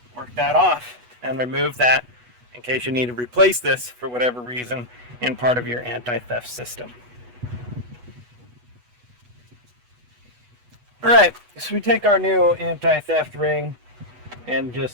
work that off and remove that in case you need to replace this for whatever reason in part of your anti-theft system. Alright, so we take our new anti-theft ring and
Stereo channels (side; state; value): left; late; 8.2 ms